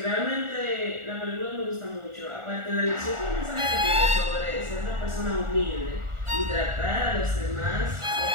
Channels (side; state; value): left; late; 1.4 ms